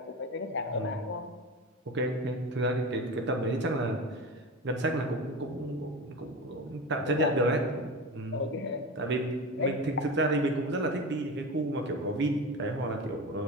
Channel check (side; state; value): both; normal; correlation 0.26